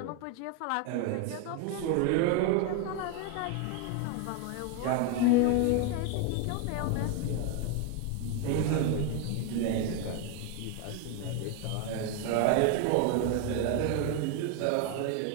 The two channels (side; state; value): both; different; correlation 0.01